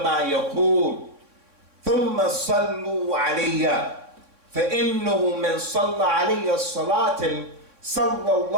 ما يقول ثم صلوا علي فإنه من صلى علي الصلاة صلى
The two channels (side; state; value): left; late; 3.6 ms